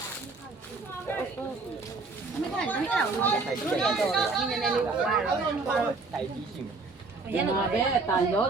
အမေကလည်းအဲ့ဒါကိုတော့ဒီနည်းနည်းလေးပါဝါတော့တိုင်ပြီးရှိမှာရန်တော့ပဲတာရော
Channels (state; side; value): quieter; left; 3.9 dB